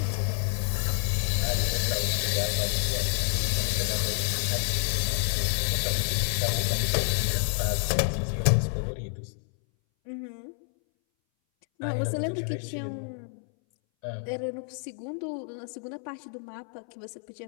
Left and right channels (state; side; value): silent; right; 59 dB below the other